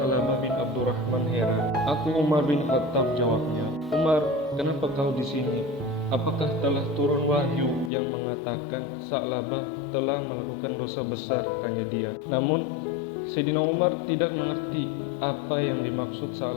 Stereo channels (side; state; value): right; drops out; at 7.9 s